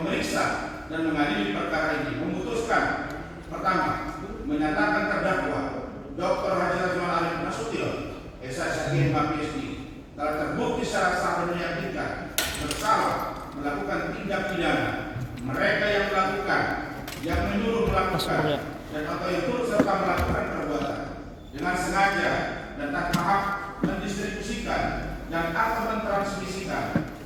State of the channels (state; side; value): identical; both; correlation 1.00